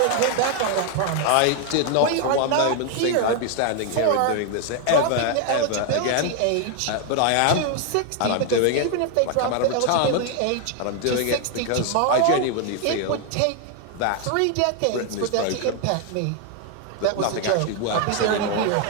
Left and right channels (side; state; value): both; different; correlation 0.01